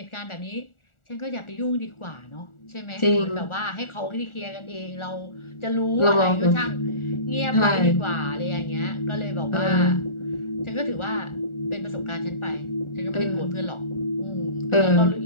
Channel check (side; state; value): right; late; 1.4 ms